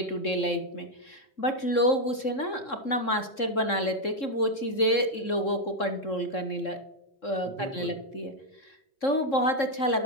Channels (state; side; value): late; right; 3.7 ms